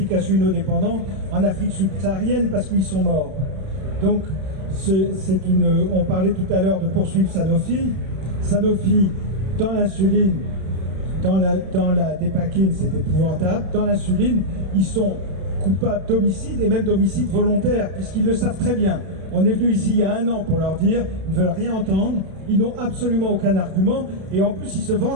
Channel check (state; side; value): late; left; 31 ms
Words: insulinodépendants en Afrique subsaharienne parce qu'ils sont morts. Donc on parlait tout à l'heure de poursuivre Sanofi. Sanofi, dans l'insuline, dans la dépakine, c'est épouvantable. Dans l'insuline, ils sont coupables d'homicide et même d'homicide volontaire, puisqu'ils le savent très bien. On est venu ici il y a 1 an pour leur dire, ils ne veulent rien entendre, ils n'ont absolument aucun argument, et en plus ils se